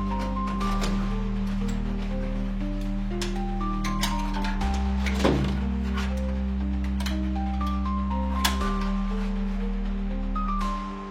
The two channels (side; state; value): both; identical; correlation 1.00